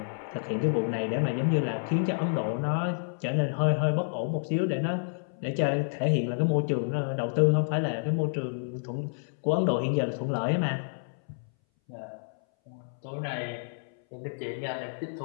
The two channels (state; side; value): silent; right; 58 dB below the other